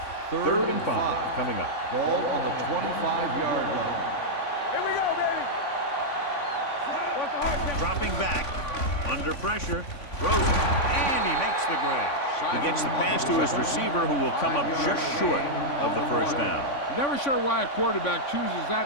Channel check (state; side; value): late; right; 3.5 ms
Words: Third and 5 coming up. Ball on the 25-yard line. Here we go, baby. What's the hard count? Dropping back. Under pressure. Throws it. And he makes the grab. He gets the pass to his receiver, who will come up just short of the first down. Never sure why a quarterback chooses